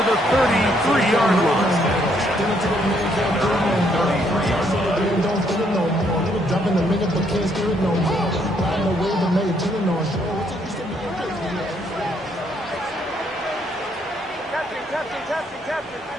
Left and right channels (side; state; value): both; normal; correlation 0.71